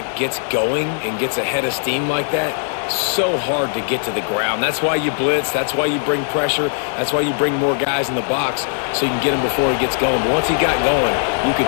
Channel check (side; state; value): right; silent; digital silence